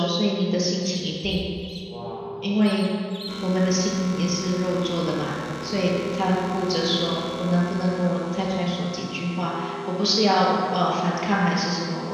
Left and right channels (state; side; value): identical; both; correlation 1.00